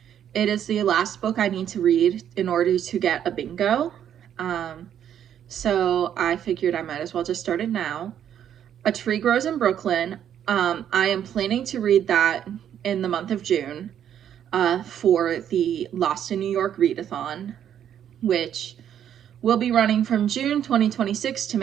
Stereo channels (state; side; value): quieter; left; 9.7 dB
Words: It is the last book I need to read in order to get a bingo. So I figured I might as well just start it now. A Tree Grows in Brooklyn. I am planning to read that in the month of June for the Lost in New York readathon, which will be running from June 2026 to